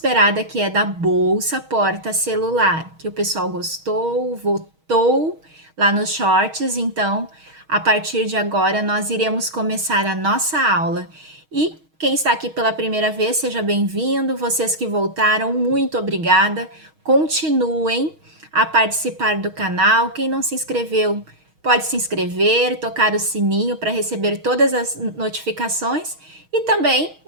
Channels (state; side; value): late; left; 6.4 ms